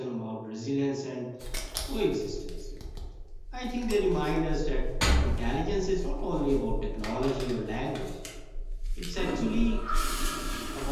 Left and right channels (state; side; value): identical; both; correlation 1.00